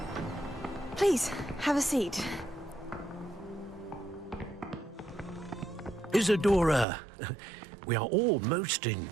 Please, have a seat. Isadora, we are all most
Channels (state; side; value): drops out; left; at 6.9 s